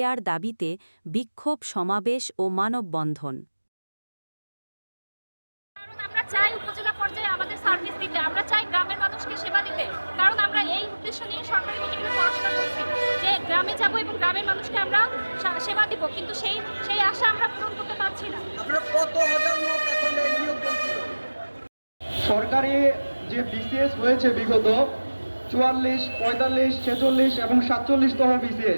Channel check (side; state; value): both; inverted; correlation -1.00